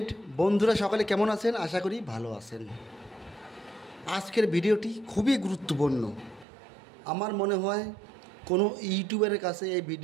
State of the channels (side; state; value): left; drops out; at 6.5 s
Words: বন্ধুরা সকলে কেমন আছেন? আশা করি ভালো আছেন। আজকের ভিডিওটি খুবই গুরুত্বপূর্ণ। আমার মনে হয় কোনো ইউটিউবারের কাছে এই